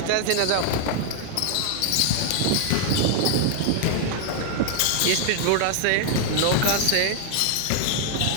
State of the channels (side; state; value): both; different; correlation 0.00